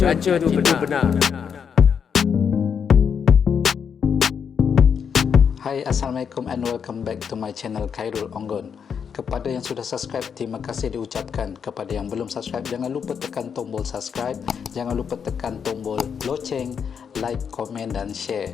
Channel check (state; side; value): quieter; right; 7.0 dB